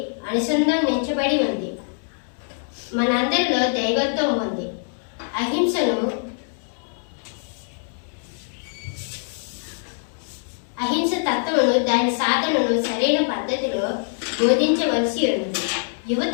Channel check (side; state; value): right; silent; digital silence